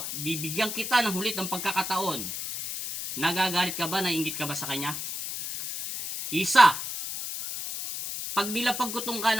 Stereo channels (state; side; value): noise; left; hiss, 5 dB below the sound